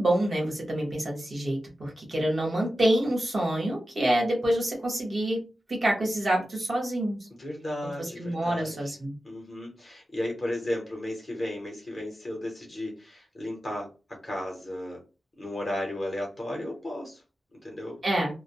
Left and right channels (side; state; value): both; normal; correlation 0.92